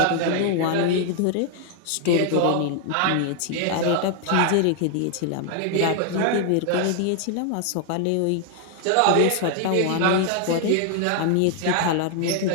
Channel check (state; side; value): different; both; correlation 0.00